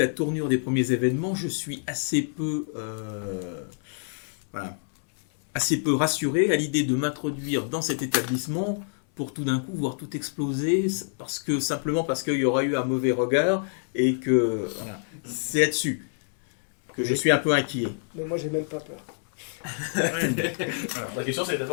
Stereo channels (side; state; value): right; silent; 60 dB below the other